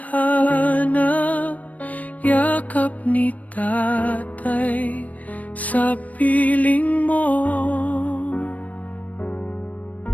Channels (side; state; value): right; late; 0.071 ms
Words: yakap ni tatay sa piling mo.